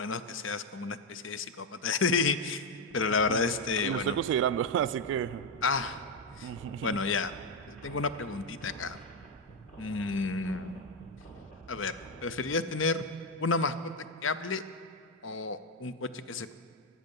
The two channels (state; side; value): normal; both; correlation 0.05